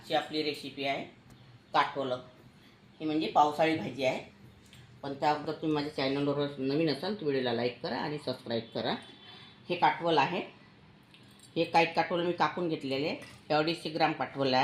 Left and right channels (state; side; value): identical; both; correlation 1.00